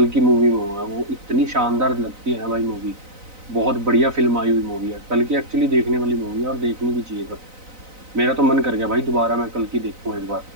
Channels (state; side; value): late; left; 4.0 ms